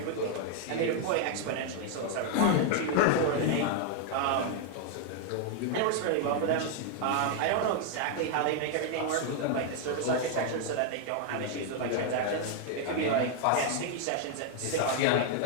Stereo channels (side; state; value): both; different; correlation 0.00